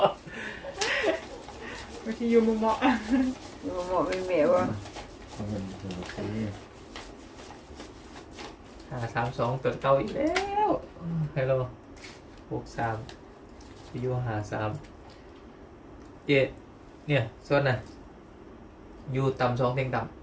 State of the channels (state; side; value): identical; both; correlation 1.00